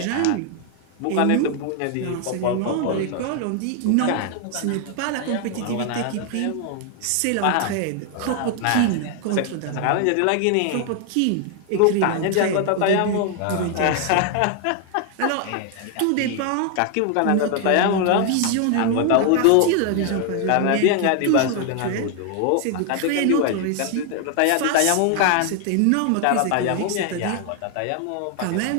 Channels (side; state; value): both; different; correlation 0.00